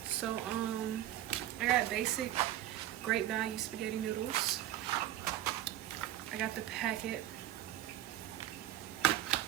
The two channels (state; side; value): quieter; left; 13.4 dB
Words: So I got basic Great Value spaghetti noodles. I got the packet,